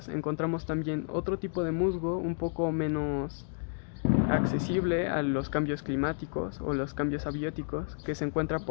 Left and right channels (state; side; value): silent; right; digital silence